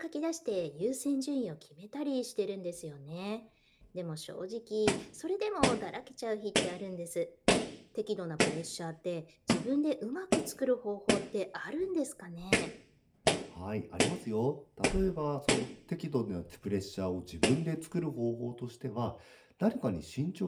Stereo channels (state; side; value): identical; both; correlation 1.00